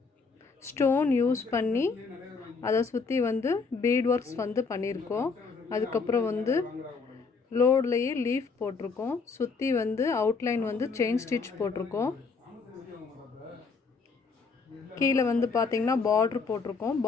ஸ்டோன் யூஸ் பண்ணி அதை சுற்றி வந்து பீட் ஒர்க்ஸ் வந்து பண்ணியிருக்கோம். அதுக்கப்புறம் வந்து லோட்லேயே லீஃப் போட்டிருக்கோம். சுற்றி வந்து அவுட்லைன் வந்து செயின் ஸ்டிச் போட்டிருக்கோம். கீழே வந்து பார்த்திங்கன்னா பார்ட்ரு போட்டிருக்கோம்.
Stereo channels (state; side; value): quieter; right; 4.7 dB